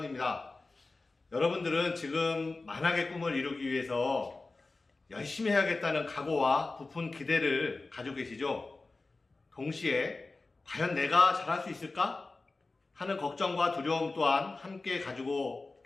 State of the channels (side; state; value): right; quieter; 3.5 dB